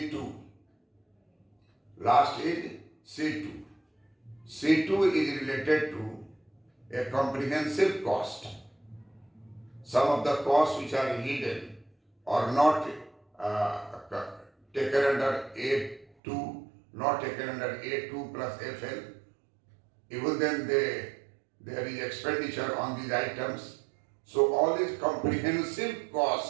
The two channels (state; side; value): drops out; left; at 16.1 s